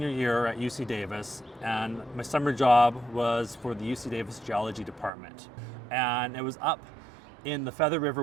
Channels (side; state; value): left; drops out; at 5.1 s